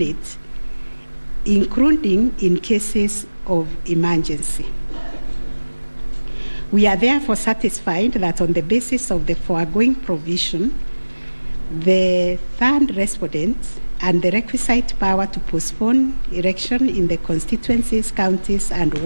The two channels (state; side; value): inverted; both; correlation -1.00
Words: including in cases of emergency. We are therefore satisfied that on the basis of the foregoing provision, the third respondent and the requisite power to postpone election in the constituencies, counties, and